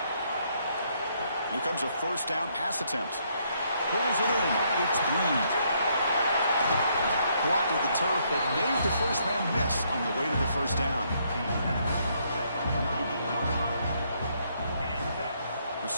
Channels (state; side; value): inverted; both; correlation -0.72